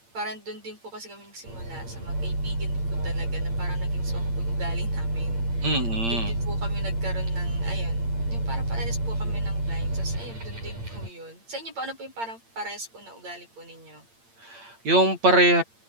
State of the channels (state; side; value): late; left; 8.7 ms